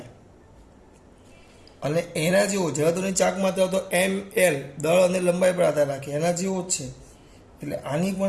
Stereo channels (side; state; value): both; identical; correlation 1.00